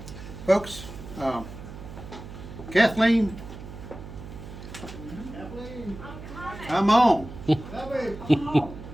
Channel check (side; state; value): right; noise; hum, 13 dB below the sound